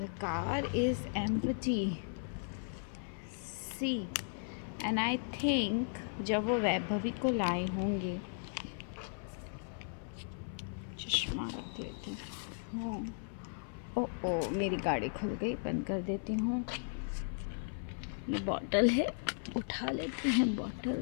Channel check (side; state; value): right; silent; 54 dB below the other